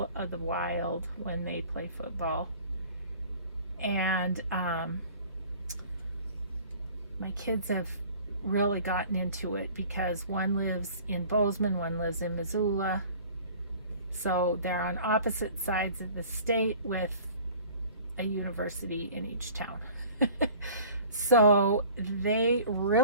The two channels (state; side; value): inverted; both; correlation -0.48